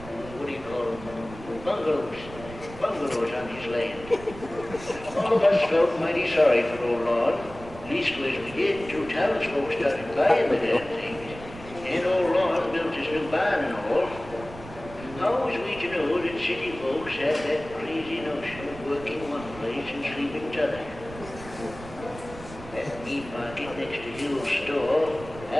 what do you call them, bungalows on his land. All of us felt mighty sorry for old Lon. Leastways we did till townsfolk started buying the damn things. And old Lon built his new barn and all. How was we to know that city folks had that crazy notion of working one place and sleeping t'other? That meat market next to Hill's store,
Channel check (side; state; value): right; noise; rumble, 15 dB below the sound